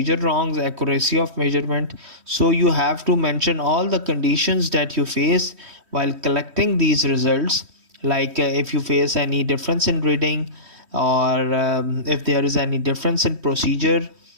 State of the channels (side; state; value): left; late; 3.1 ms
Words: wrongs, accuracy of measurement. So you have to mention all the conditions that you face while collecting these results, like if you face any difference in reading, or if there is any difference in procedure,